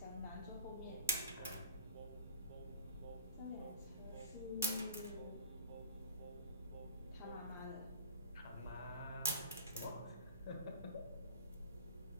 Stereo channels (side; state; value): both; inverted; correlation -0.34